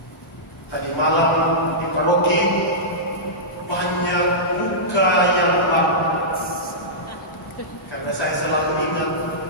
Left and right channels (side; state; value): both; normal; correlation -0.15